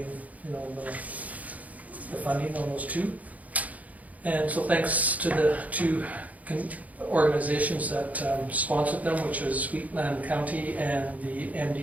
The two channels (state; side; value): late; left; 0.073 ms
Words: the funding on those two. And so thanks to the two organizations that sponsored them, which was Wheatland County and the